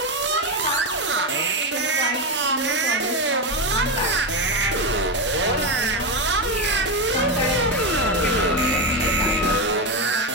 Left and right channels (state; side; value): normal; both; correlation 0.12